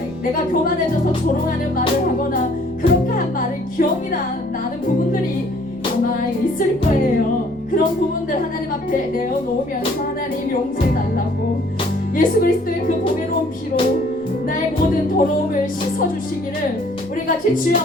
내가 교만해져서 조롱하는 말을 하거나 그렇게 한 말을 기억이 나는 부분들이 아마 있을 거예요. 그런 부분들 하나님 앞에 내어놓으면서 하나님 용서해달라고 예수 그리스도의 그 보배로운 피로 나의 모든 더러움을 씻어주시기를 우리 같이 주여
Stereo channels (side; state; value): left; noise; rumble, 25 dB below the sound